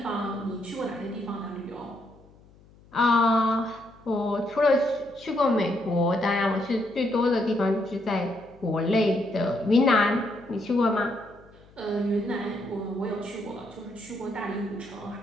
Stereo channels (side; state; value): left; noise; hum, 26 dB below the sound